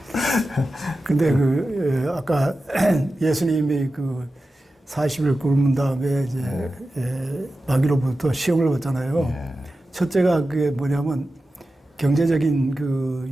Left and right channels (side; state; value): both; normal; correlation 0.93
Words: 근데 아까 예수님이 40일 굶은 다음에 이제 마귀로부터 시험을 받잖아요. 첫째가 그게 뭐냐면 경제적인 그